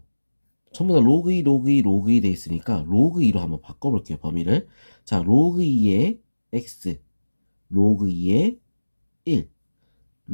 전부 다 로그 2, 로그 2, 로그 2 돼 있으니까 로그 2로 한번 바꿔볼게요, 범위를. 자, 로그 2의 x, 로그 2의 1,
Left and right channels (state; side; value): inverted; both; correlation -1.00